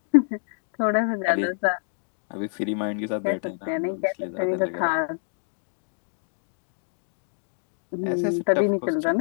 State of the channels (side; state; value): right; silent; 60 dB below the other